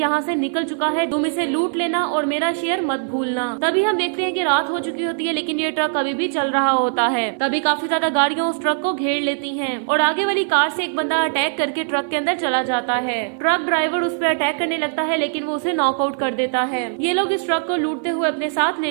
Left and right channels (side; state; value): left; silent; 60 dB below the other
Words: से निकल चुका है, तुम इसे लूट लेना और मेरा शेयर मत भूलना। तभी हम देखते हैं कि रात हो चुकी होती है लेकिन ये ट्रक अभी भी चल रहा होता है। तभी काफी ज्यादा गाड़ियां उस ट्रक को घेर लेती हैं और आगे वाली कार से एक बंदा अटैक करके ट्रक के अंदर चला जाता है। ट्रक ड्राइवर उस पर अटैक करने लगता है लेकिन वो उसे नॉकआउट कर देता है। ये लोग इस ट्रक को लूटते हुए अपने साथ